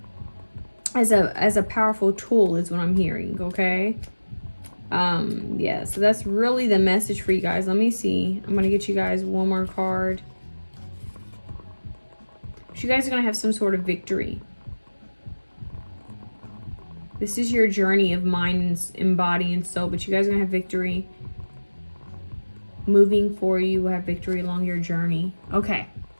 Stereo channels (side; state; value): both; inverted; correlation -1.00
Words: As a powerful tool is what I'm hearing, okay? Yeah, so that's really the message for you guys. Let me see. I'm gonna get you guys one more card. You guys are gonna have some sort of victory. This is your journey of mind and body and soul, but you guys are gonna have victory. Moving forward, you will have victory along your journey. Okay,